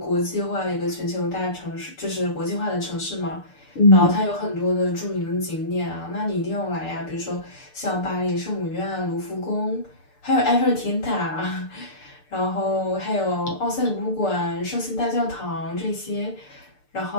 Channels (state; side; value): late; right; 6.7 ms